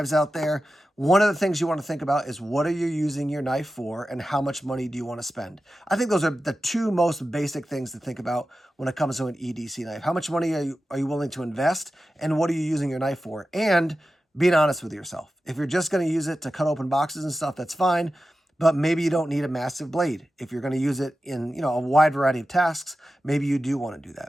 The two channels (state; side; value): normal; both; correlation 0.93